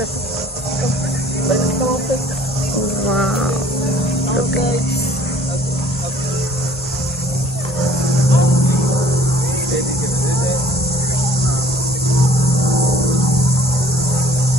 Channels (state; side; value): normal; both; correlation 0.53